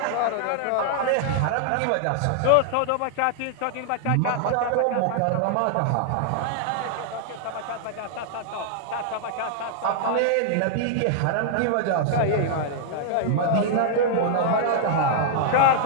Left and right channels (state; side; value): different; both; correlation -0.01